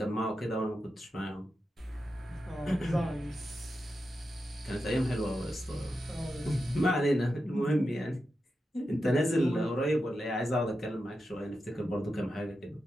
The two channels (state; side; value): normal; both; correlation 0.89